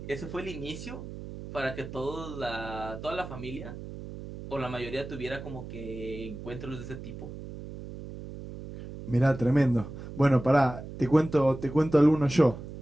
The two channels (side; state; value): right; noise; hum, 11 dB below the sound